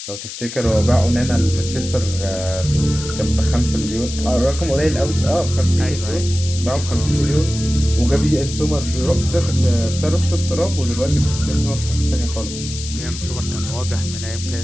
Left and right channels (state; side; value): noise; left; hiss, 10 dB below the sound